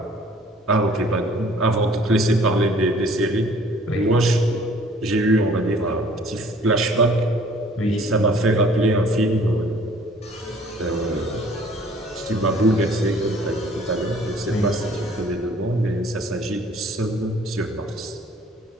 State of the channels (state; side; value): normal; both; correlation 0.54